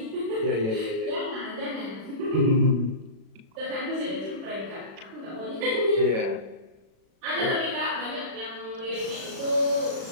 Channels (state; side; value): late; left; 36 ms